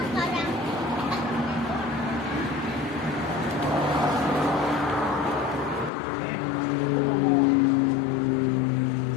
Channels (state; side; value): drops out; right; at 5.9 s